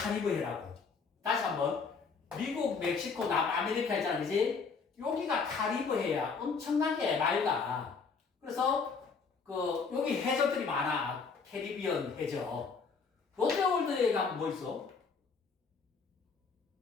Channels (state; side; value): quieter; right; 5.1 dB